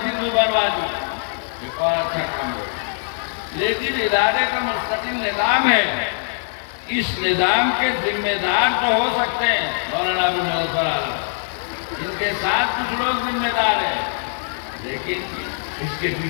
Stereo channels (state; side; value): silent; right; 64 dB below the other